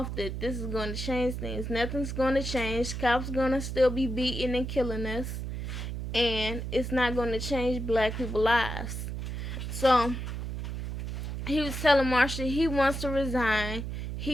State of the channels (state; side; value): noise; right; hum, 5 dB below the sound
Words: that this is going to change things. Nothing's going to change. Cops going to still be beating and killing us. And it's not going to change black people's lives. So he was telling Marsha he wants to resign.